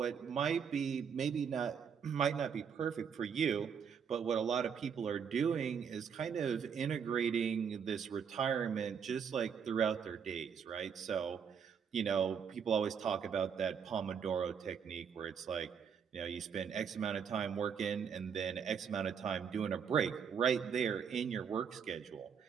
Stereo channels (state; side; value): quieter; left; 7.0 dB